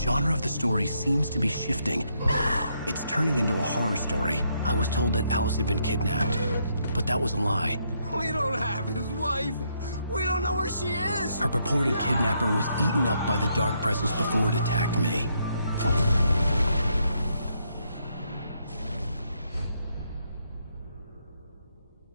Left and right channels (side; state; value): both; inverted; correlation -0.75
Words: of the story seems to be shifting. It's turning into a horror story. I was told that Alice had been kidnapped, but that was a lie. We don't have his wife. We don't know where she is. Her purported kidnapper was eaten up by the dark presence before it attacked me.